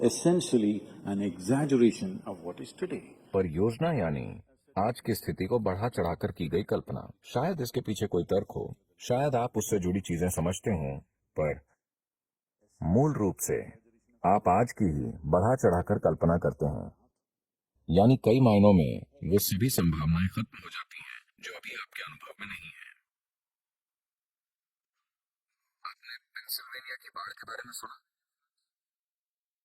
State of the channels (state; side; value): identical; both; correlation 1.00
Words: essentially an exaggeration of what is today. पर योजना यानी आज की स्थिति को बढ़ा चढ़ाकर की गई कल्पना। शायद इसके पीछे कोई तर्क हो, शायद आप उससे जुड़ी चीजें समझते हो, पर मूल रूप से आप आज की ही बढ़ा चढ़ाकर कल्पना करते हैं। यानी कई मायनों में वो सभी संभावनाएं खत्म हो जाती हैं जो अभी आपके अनुभव में नहीं है। आपने पेंसिल्वेनिया की बाढ़ के बारे में सुना?